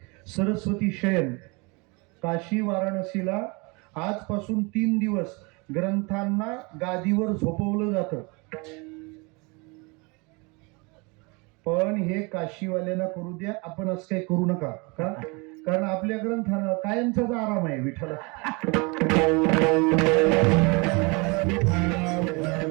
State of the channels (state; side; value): quieter; left; 28.6 dB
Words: सरस्वती शयन. काशी वाराणसीला आजपासून 3 दिवस ग्रंथांना गादीवर झोपवलं जातं. पण हे काशीवाल्यांना करू द्या, आपण असं काही करू नका. का? कारण आपल्या ग्रंथाला कायमचाच आराम आहे. विठ्ठला,